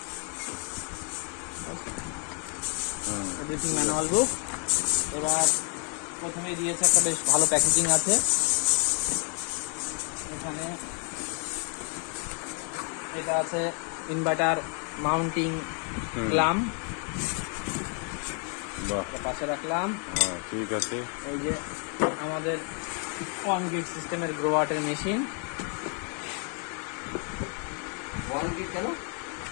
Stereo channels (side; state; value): right; quieter; 38.9 dB